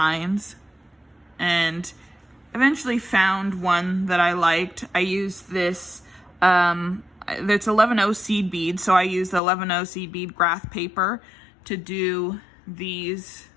and eventually found one that I liked. I used this, it's 11-0 seed bead, so I used the 11-0 seed bead graph paper to do these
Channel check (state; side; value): drops out; right; at 9.4 s